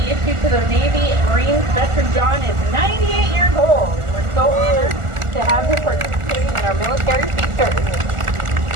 issued to the Navy Marines. Veteran John is 98 years old. We're so honored to have him participating in our military features.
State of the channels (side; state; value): left; late; 1.4 ms